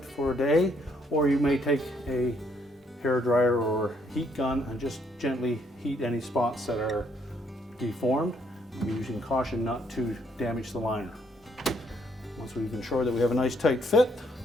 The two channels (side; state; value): both; normal; correlation 0.70